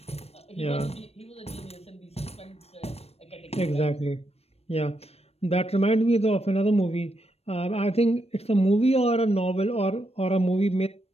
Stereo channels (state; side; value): late; right; 0.29 ms